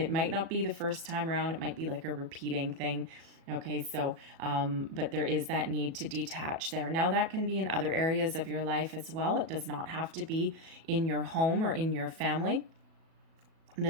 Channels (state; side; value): late; left; 37 ms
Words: might not be the first time around. It might be like a repeating thing. Okay. So, but there is that need to detach there. Now that can be in other areas of your life as well. It does not have to be in your home or in your family.